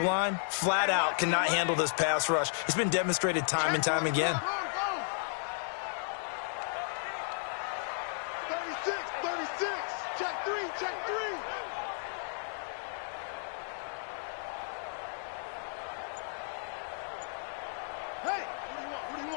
flat out, cannot handle this pass rush. It's been demonstrated time and time again. 36. Check 3. Hey, what do you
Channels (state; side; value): silent; right; 55 dB below the other